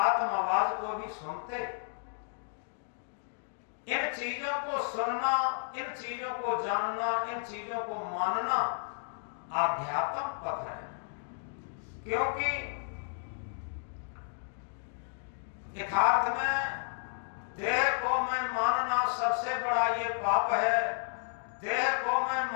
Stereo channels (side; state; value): right; silent; digital silence